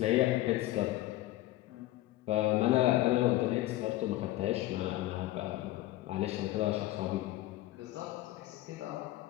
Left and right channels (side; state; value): right; quieter; 16.4 dB